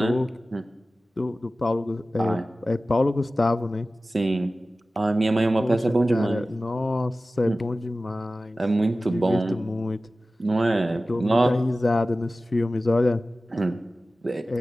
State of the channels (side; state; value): both; normal; correlation 0.96